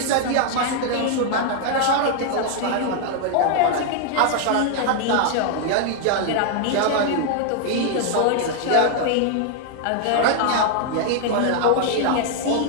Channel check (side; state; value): both; different; correlation 0.00